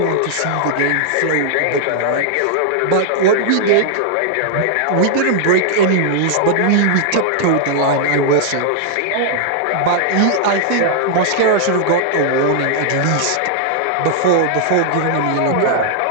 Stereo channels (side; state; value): both; different; correlation -0.01